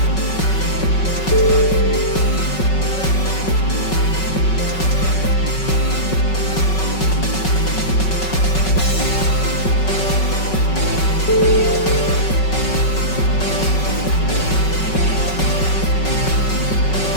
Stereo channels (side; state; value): right; late; 5.4 ms